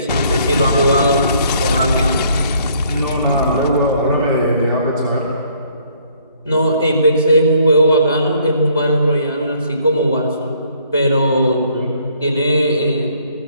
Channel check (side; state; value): both; inverted; correlation -0.63